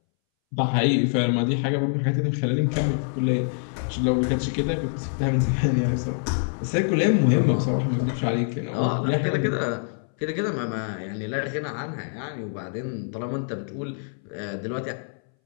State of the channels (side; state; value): right; silent; 61 dB below the other